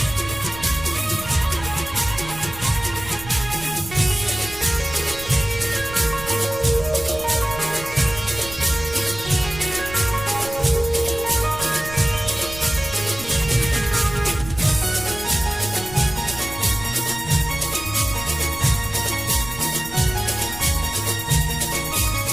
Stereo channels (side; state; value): right; noise; rumble, 14 dB below the sound